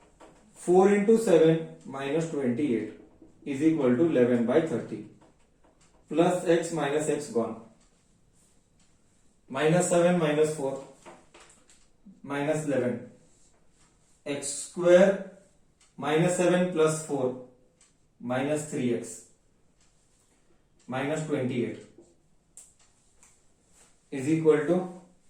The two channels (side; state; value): both; identical; correlation 1.00